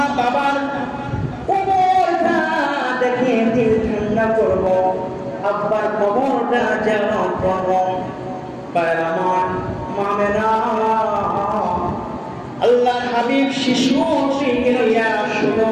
বাবার কবরটা দেখে দিল ঠান্ডা করবো, আব্বার কবরটা যেন করবো। আল্লাহ হাবিব শিশু শুনো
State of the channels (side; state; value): both; identical; correlation 1.00